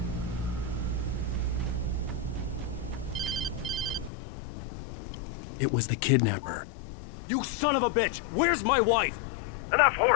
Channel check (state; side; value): drops out; right; at 4.1 s